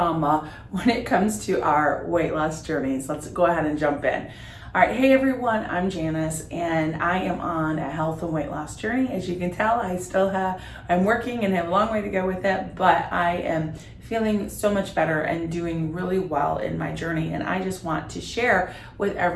when it comes to our weight loss journeys. Let's go ahead and jump in. All right, hey everyone, I'm Janice and I am on a health and weight loss journey. As you can tell, I'm working and have a long way to go with it, but I am feeling so much better and doing really well in my journey. And I just want to share with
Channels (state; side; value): identical; both; correlation 1.00